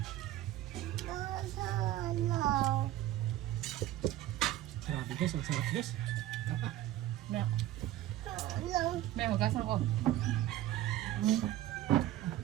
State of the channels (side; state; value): left; quieter; 14.0 dB